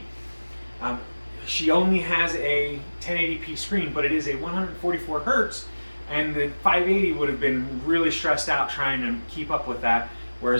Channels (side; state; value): both; inverted; correlation -1.00